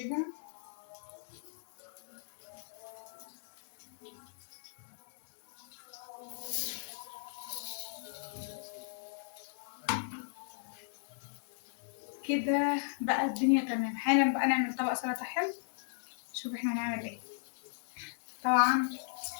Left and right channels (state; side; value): silent; right; digital silence